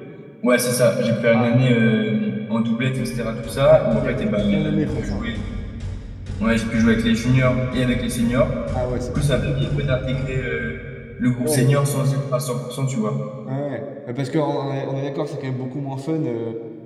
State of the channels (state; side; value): identical; both; correlation 1.00